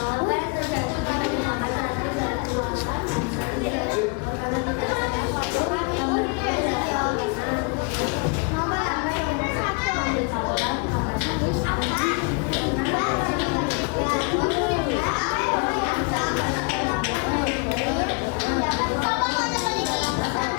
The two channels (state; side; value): quieter; right; 33.2 dB